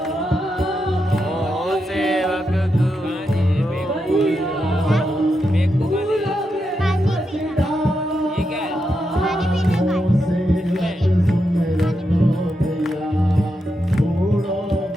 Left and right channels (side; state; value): both; normal; correlation 0.85